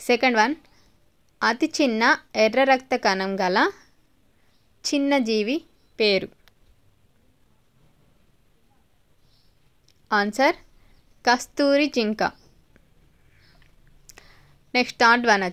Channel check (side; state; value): both; identical; correlation 1.00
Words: Second one, అతి చిన్న ఎర్ర రక్త కణం గల చిన్న జీవి పేరు? ఆన్సర్ కస్తూరి జింక. నెక్స్ట్ థర్డ్ వన్